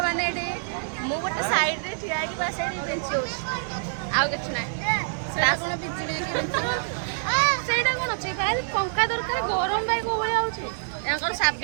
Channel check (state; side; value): silent; left; digital silence